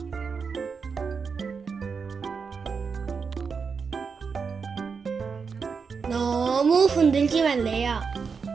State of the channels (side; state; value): left; quieter; 5.5 dB